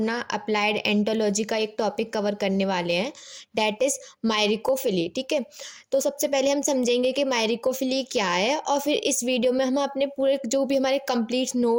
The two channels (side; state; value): both; identical; correlation 1.00